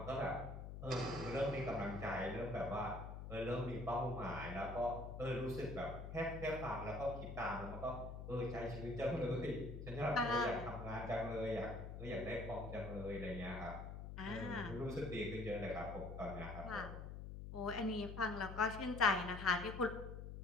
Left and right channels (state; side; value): noise; left; hum, 8 dB below the sound